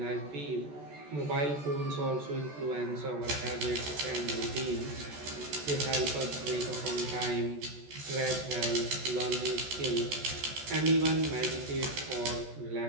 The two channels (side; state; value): left; late; 14 ms